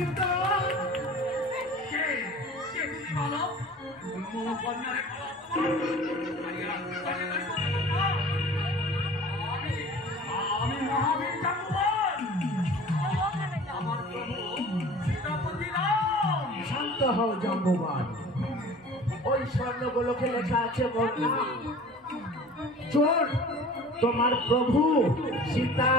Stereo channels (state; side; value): normal; both; correlation 0.43